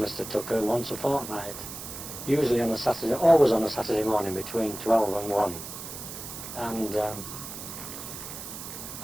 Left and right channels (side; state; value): right; noise; hiss, 10 dB below the sound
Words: Tucker once a fortnight, usually on a Saturday, always on a Saturday morning between 12 and 1. And